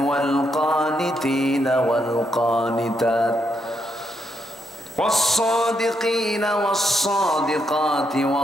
ওয়াল কানিতিনা ওয়াল কানিতাত والصادقين والصادقات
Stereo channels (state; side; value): normal; both; correlation 0.79